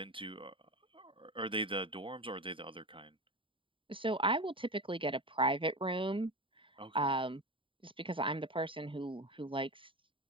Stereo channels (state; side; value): late; left; 0.25 ms